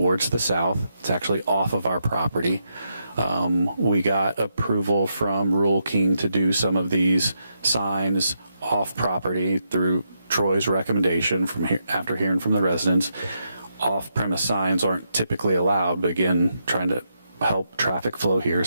the south. It's actually off of our property. We got approval from Rural King to do some of these signs off property through Troy's recommendation after hearing from the residents. Off-premise signs aren't typically allowed, but again, trying to help traffic flow here.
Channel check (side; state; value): both; inverted; correlation -0.81